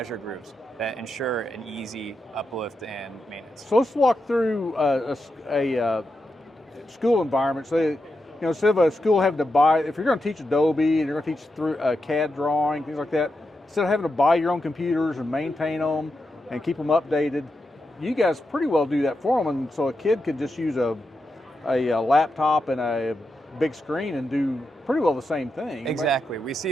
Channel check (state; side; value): normal; both; correlation 0.87